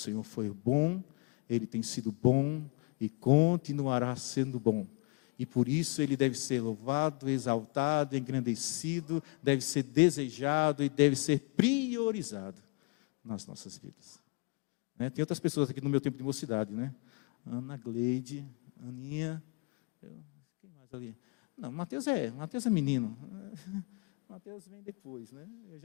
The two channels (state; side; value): quieter; right; 29.5 dB